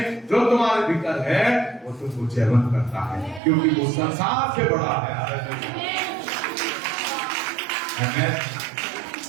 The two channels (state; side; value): drops out; left; at 3.4 s